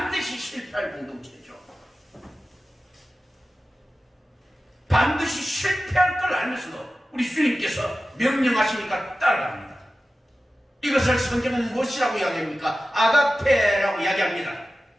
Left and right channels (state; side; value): normal; both; correlation 0.95